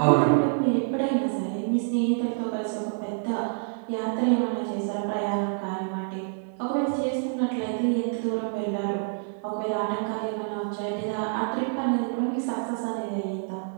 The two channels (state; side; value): silent; left; 60 dB below the other